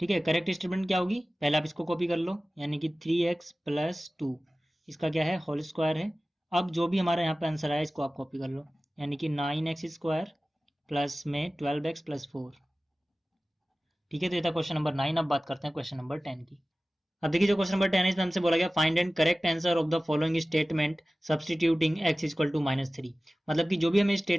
है, करेक्ट स्टेटमेंट क्या होगी, पहले आप इसको कॉपी कर लो, यानी कि 3x प्लस 2 इसका क्या है होल स्क्वायर है। अब जो भी हमारा यहाँ पे आंसर आया इसको आप कॉपी कर लो, यानी कि 9x स्क्वायर प्लस में 12x प्लस 4। ठीक है, तो ये था क्वेश्चन नंबर 9। अब बात करते हैं क्वेश्चन नंबर 10 की। अब देखिए जो क्वेश्चन नंबर 10 है इसमें हमसे बोला गया find and correct answer of the following statement substituting x equal to -3। मतलब कि जो भी हमें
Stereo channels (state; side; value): normal; both; correlation 0.97